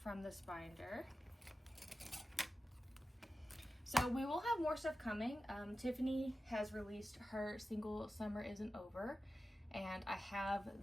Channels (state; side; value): normal; both; correlation 0.94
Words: this binder. So we will have more stuff coming. Tiffany has released her single Summer Isn't Over, and I have